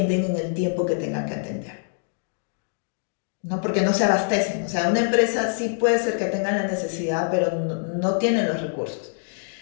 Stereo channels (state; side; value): silent; right; digital silence